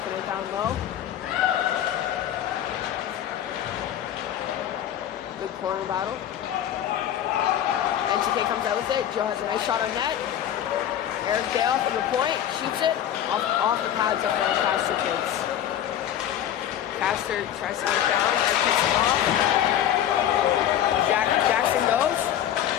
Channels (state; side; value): quieter; right; 10.8 dB